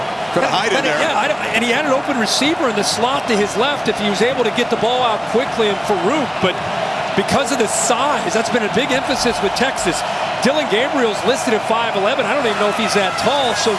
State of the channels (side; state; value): both; identical; correlation 1.00